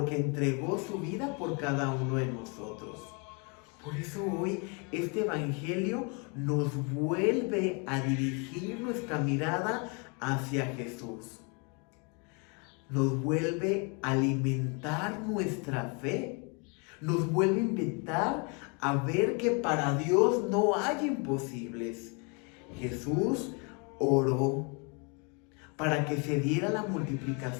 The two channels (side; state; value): right; quieter; 34.0 dB